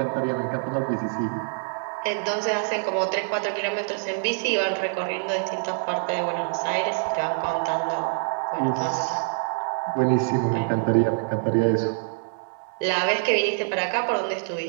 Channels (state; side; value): silent; left; digital silence